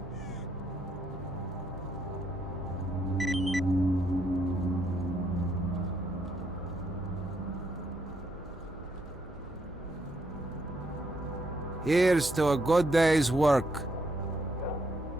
Here's to a good day's work.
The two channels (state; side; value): normal; both; correlation 0.74